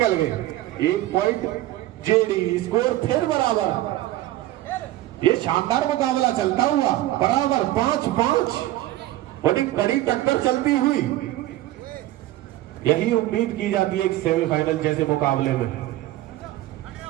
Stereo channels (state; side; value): quieter; left; 15.6 dB